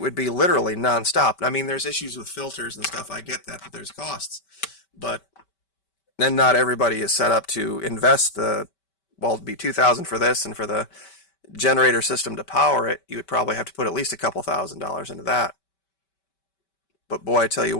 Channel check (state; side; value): late; right; 5.2 ms